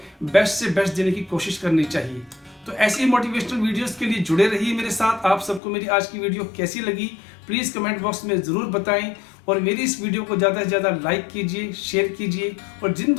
बेस्ट से बेस्ट देने की कोशिश करनी चाहिए। तो ऐसी मोटिवेशनल वीडियोस के लिए जुड़े रहिए मेरे साथ। आप सबको मेरी आज की वीडियो कैसी लगी प्लीज़ कमेंट बॉक्स में ज़रूर बताएं और मेरी इस वीडियो को ज़्यादा से ज़्यादा लाइक कीजिए, शेयर कीजिए, और जिन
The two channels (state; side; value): drops out; right; at 5.6 s